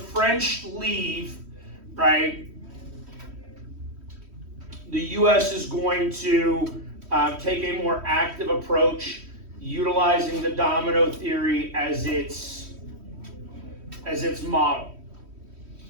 leave, right, the U.S. is going to take a more active approach, utilizing the domino theory as its model,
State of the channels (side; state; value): left; late; 3.1 ms